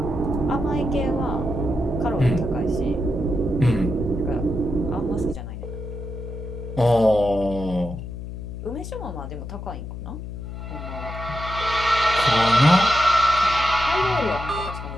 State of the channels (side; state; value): left; noise; hum, 9 dB below the sound